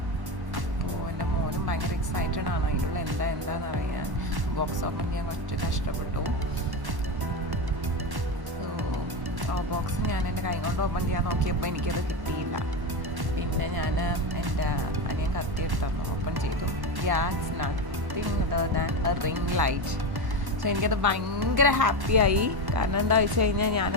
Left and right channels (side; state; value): left; late; 1.1 ms